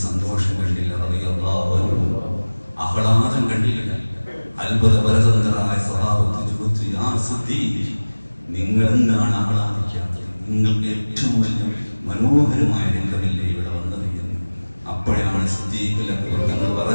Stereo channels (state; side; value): inverted; both; correlation -1.00